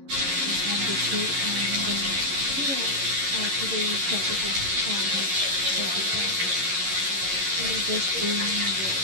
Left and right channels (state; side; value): late; left; 11 ms